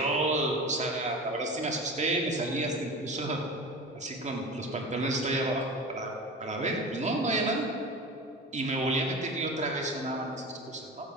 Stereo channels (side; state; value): both; normal; correlation 0.31